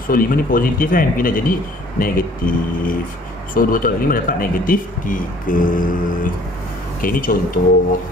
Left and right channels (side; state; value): both; normal; correlation 0.56